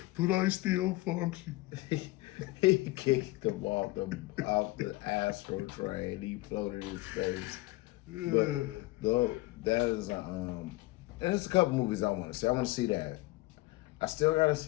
But I still function. He kicked him off the Astro train. He floated in space. Yeah. But though that is and there's a couple movies I want to see. I want to see that. I still got to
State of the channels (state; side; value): quieter; right; 20.3 dB